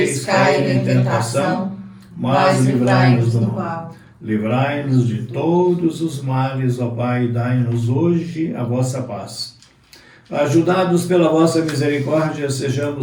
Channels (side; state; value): both; identical; correlation 1.00